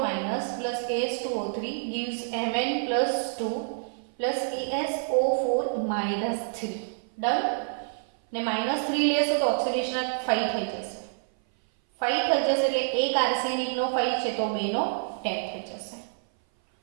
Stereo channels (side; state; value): left; silent; 57 dB below the other